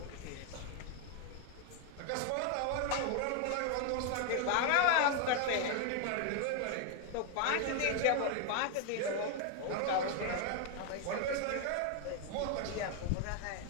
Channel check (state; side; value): different; both; correlation 0.01